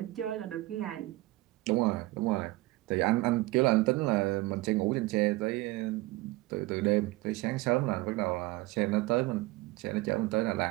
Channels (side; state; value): left; quieter; 19.9 dB